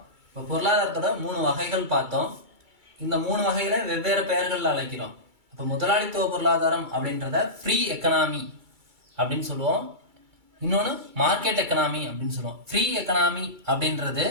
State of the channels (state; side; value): late; left; 2.3 ms